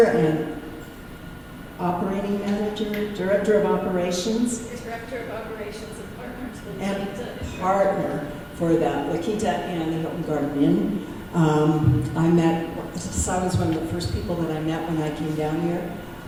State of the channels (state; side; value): identical; both; correlation 1.00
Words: and operating manager, director of operations. Director of Operations and Partners with La And Quinta. partner for the La Quinta and the Hilton Garden Inn. Cy was one of the first people that I met when I came down here.